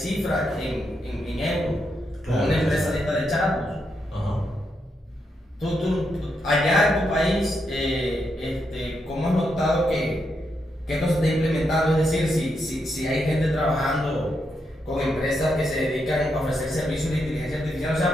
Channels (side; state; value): both; normal; correlation 0.82